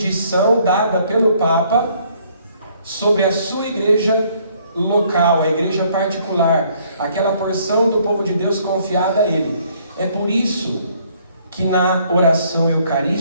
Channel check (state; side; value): inverted; both; correlation -0.64